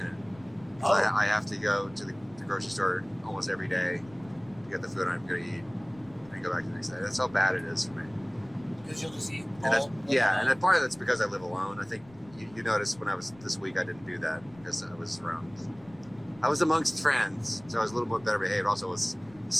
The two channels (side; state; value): left; noise; rumble, 24 dB below the sound